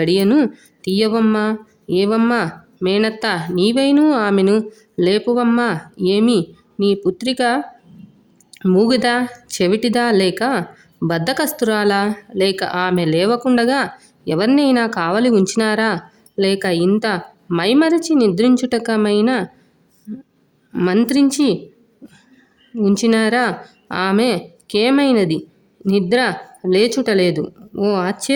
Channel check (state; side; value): identical; both; correlation 1.00